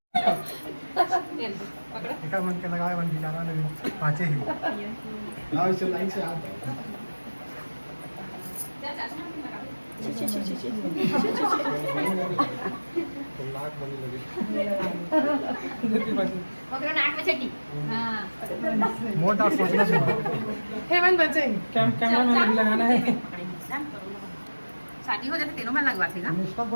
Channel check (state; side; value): inverted; both; correlation -1.00